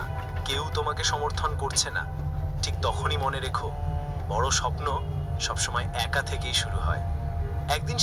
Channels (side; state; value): both; identical; correlation 1.00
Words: কেউ তোমাকে সমর্থন করছে না। ঠিক তখনই মনে রেখো, বড় স্বপ্ন সবসময় একা থেকেই শুরু হয়। একদিন